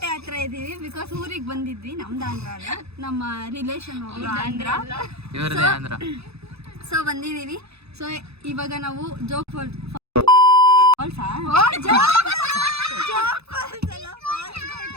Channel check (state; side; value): late; left; 0.79 ms